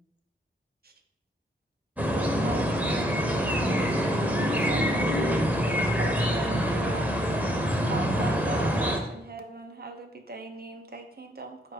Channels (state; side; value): normal; both; correlation 0.69